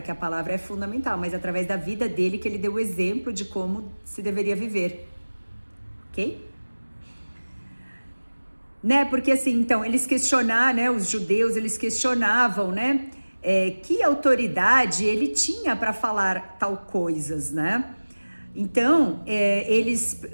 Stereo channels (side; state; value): both; inverted; correlation -1.00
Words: que a palavra é fundamental, mas através da vida dele, que ele deu o exemplo de como se deveria viver, ok? Né, porque assim, então, eles questionaram, né, os judeus, eles questionavam, né, que autoridade ele tinha para falar tal coisas, né? Então,